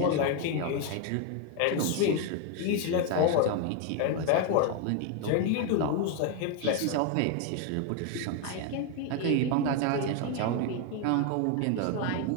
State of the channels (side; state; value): both; different; correlation 0.01